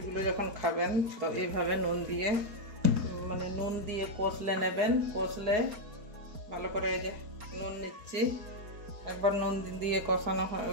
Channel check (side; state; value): left; late; 4.7 ms